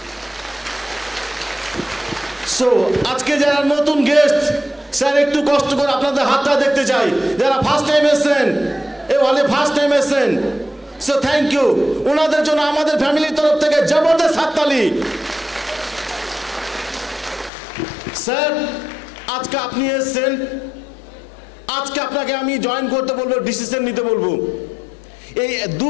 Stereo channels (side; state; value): right; drops out; at 17.5 s